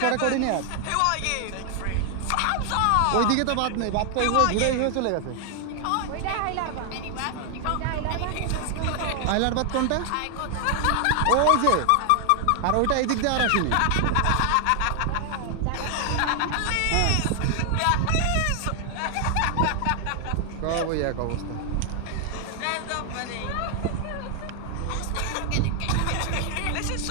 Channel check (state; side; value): different; both; correlation 0.00